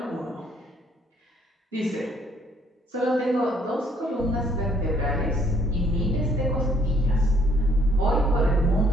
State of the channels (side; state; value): both; normal; correlation 0.64